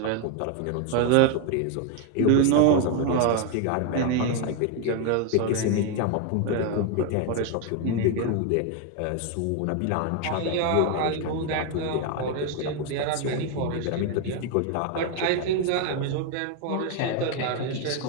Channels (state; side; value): different; both; correlation 0.01